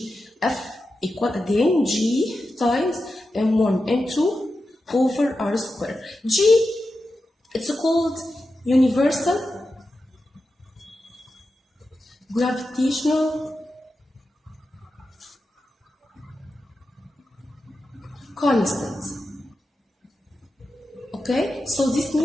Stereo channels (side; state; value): both; normal; correlation 0.90